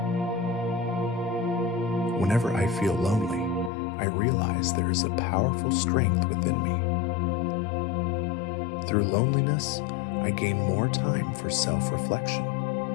Whenever I feel lonely, I realize there is a powerful strength within me. Through loneliness, I gain more time for self-reflection.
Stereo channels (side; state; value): right; drops out; at 3.7 s